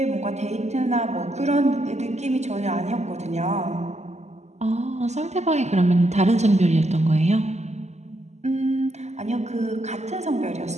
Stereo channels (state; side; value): late; left; 0.33 ms